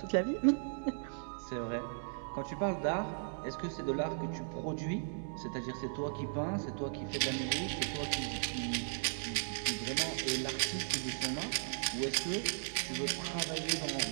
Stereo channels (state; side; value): silent; left; digital silence